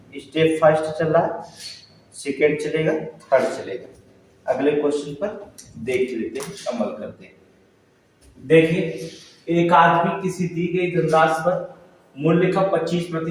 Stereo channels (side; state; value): both; identical; correlation 1.00